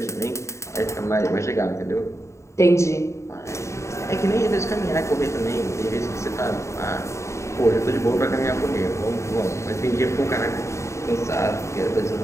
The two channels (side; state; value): right; late; 0.14 ms